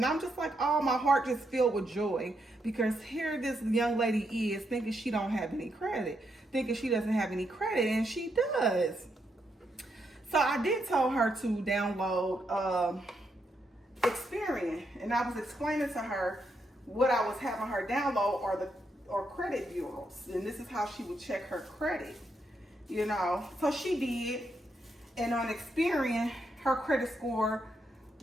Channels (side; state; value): both; normal; correlation 0.80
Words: I'm just like, oh, my heart just filled with joy. Because here this young lady is thinking she don't have any credit. Thinking she doesn't have any credit. And she does. So I did tell her to download Experian. And I was explaining to her what I was having her download are credit bureaus. And this is how she would check her credit. You know. So she did. And on Experian, her credit score